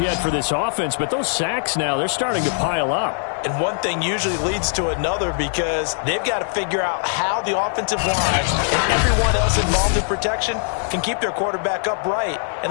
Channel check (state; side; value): silent; right; 65 dB below the other